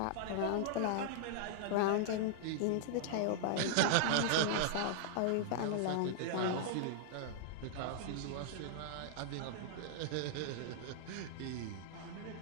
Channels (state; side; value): different; both; correlation -0.01